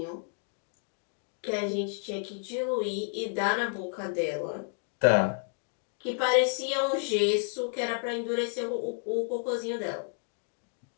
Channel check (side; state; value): right; silent; 55 dB below the other